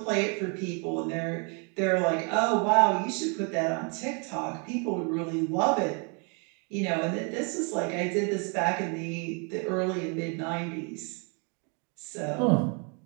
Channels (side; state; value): left; quieter; 36.3 dB